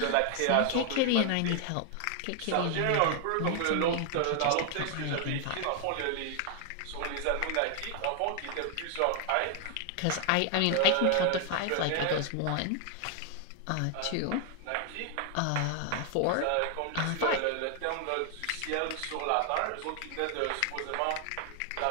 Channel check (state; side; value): different; both; correlation 0.00